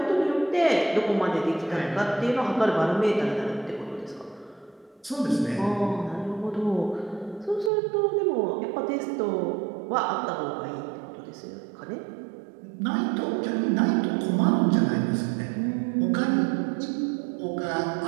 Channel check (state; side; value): drops out; left; at 7.7 s